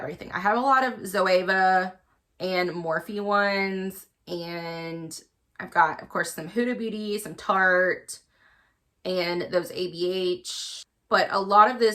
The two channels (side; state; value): both; identical; correlation 1.00